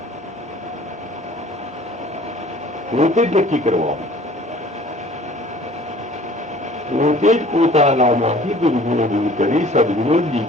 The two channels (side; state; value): both; normal; correlation 0.50